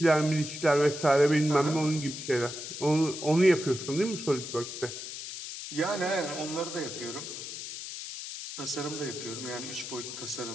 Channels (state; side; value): noise; left; hiss, 8 dB below the sound